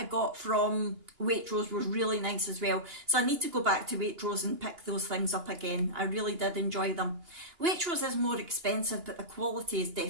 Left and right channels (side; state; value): left; late; 2.9 ms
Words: got from Waitrose was really nice as well. So I need to go back to Waitrose and pick those things up again. I really did enjoy them. Waitrose is more expensive, but the quality is